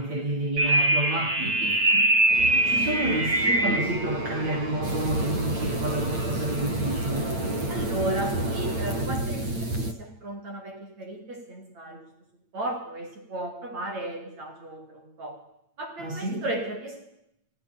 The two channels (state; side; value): late; left; 8.8 ms